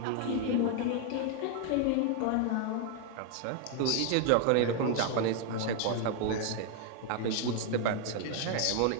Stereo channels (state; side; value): different; both; correlation 0.01